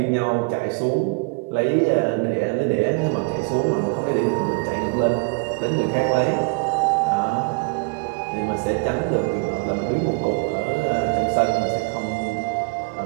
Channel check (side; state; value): left; quieter; 33.1 dB